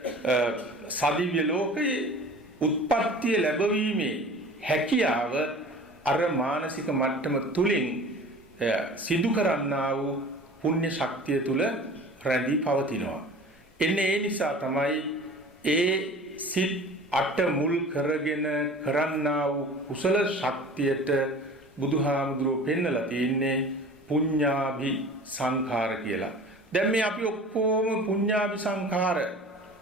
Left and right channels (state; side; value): normal; both; correlation 0.42